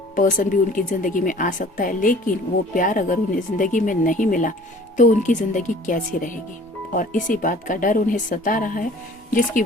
पर्सन भी उनकी ज़िंदगी में आ सकता है, लेकिन वो प्यार अगर उन्हें ज़िंदगी में नहीं मिला तो उनकी ज़िंदगी कैसी रहेगी। और इसी बात का डर उन्हें सता रहा है, जिसकी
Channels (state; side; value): normal; both; correlation 0.50